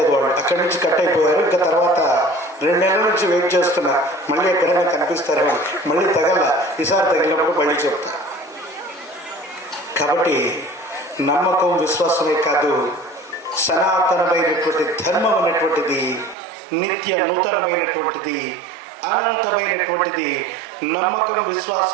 వాళ్ళు. అక్కడి నుంచి కట్ అయిపోయారు. ఇంకా తర్వాత 2 నెలల నుంచి వెయిట్ చేస్తున్నా, మళ్ళీ ఎక్కడైనా కనిపిస్తారు. మళ్ళీ తగల, ఈసారి తగిలినప్పుడు మళ్ళీ చెప్తా. కాబట్టి నమ్మకం విశ్వాసమే కాదు, సనాతనమైనటువంటి ధర్మం అనేటువంటిది నిత్య నూతనమైనటువంటిది, అనంతమైనటువంటిది. నమ్మకం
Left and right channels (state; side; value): drops out; left; at 16.4 s